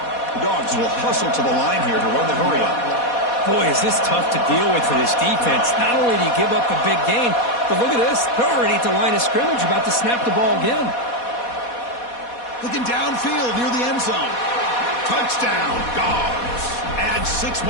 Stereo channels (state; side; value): late; right; 4.2 ms